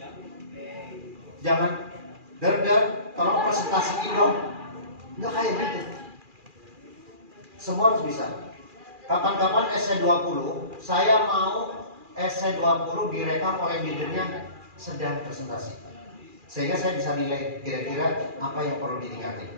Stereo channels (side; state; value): left; late; 2.4 ms